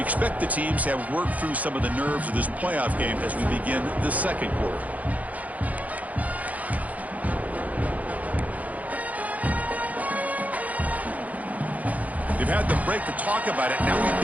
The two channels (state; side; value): late; left; 0.074 ms